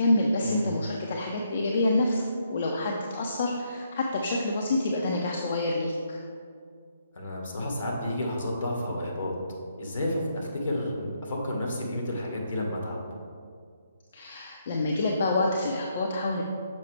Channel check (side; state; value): both; inverted; correlation -0.76